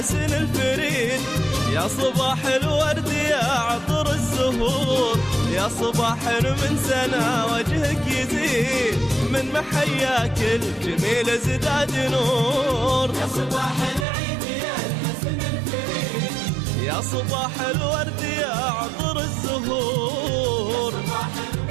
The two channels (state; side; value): drops out; left; at 14.1 s